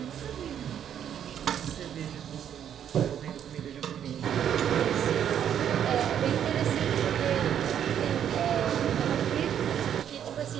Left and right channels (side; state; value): left; quieter; 9.4 dB